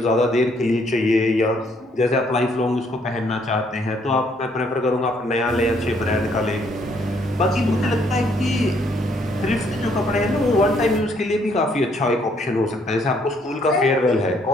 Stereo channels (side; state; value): both; normal; correlation 0.68